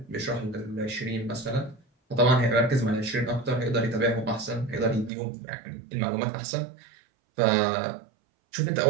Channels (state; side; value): drops out; left; at 5.1 s